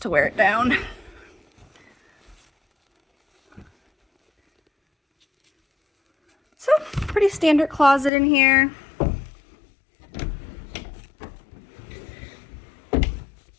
to wear it down. So, pretty standard closet in here.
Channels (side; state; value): right; drops out; at 8.1 s